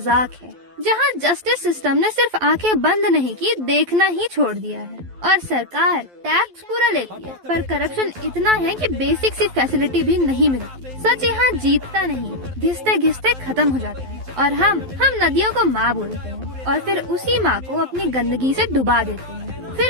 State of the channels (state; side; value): late; left; 12 ms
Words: है, जहाँ जस्टिस सिस्टम ने सिर्फ आंखें बंद नहीं की, देखना ही छोड़ दिया है और सरकार टैक्स पूरा लेती है पर करप्शन इतना है कि बेसिक सी फैसिलिटी भी नहीं मिलती। सच यहाँ जीतता नहीं, घिसते घिसते खत्म हो जाता है और हम नदियों को माँ बोलते हैं और फिर उसी माँ को अपनी गंदगी से डुबा देते हैं।